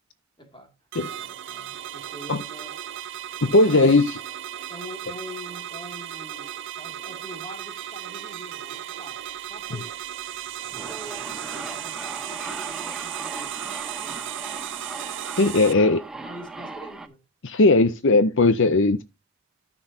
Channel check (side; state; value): both; normal; correlation -0.03